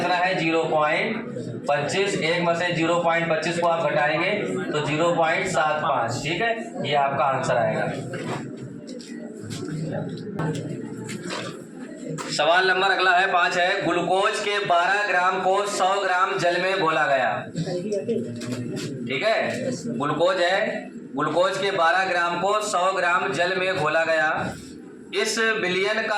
है 0.25, 1 में से 0.25 को आप घटाएंगे तो 0.75। ठीक है, ये आपका आंसर आएगा। सवाल नंबर अगला है 5 है, ग्लूकोज के 12 ग्राम को 100 ग्राम जल में घोला गया। ठीक है, ग्लूकोज है, ग्लूकोज के 12 ग्राम को 100 ग्राम जल में घोला गया। इस विलयन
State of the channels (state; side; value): identical; both; correlation 1.00